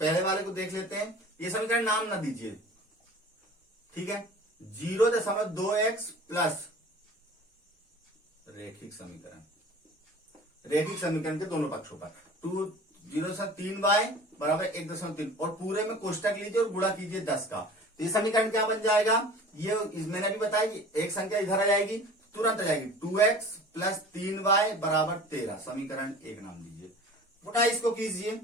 वाले को देख लेते हैं, ये समीकरण नाम ना दीजिए, ठीक है, 0.2x प्लस रैखिक समीकरण, रैखिक समीकरण के दोनों पक्षों पर 0.3y बराबर 1.3, और पूरे में कोष्टक लीजिए और गुणा कीजिए 10 का। तो ये समीकरण क्या बन जाएगा, ये मैंने भी बताया कि एक संख्या इधर आ जाएगी, तुरंत आ जाएगी, 2x प्लस 3y बराबर 13, समीकरण 1 नाम दीजिए। पुनः इसको कीजिए,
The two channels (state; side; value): normal; both; correlation 0.42